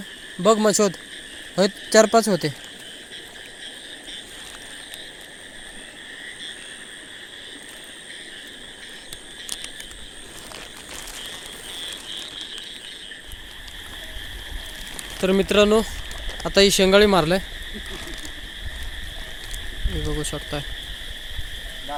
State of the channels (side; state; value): both; identical; correlation 1.00